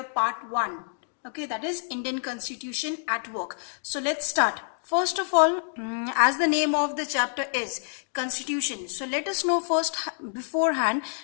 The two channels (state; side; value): silent; right; digital silence